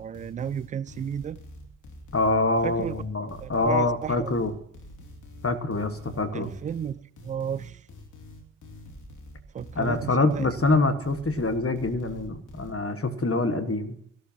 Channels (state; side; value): normal; both; correlation 0.20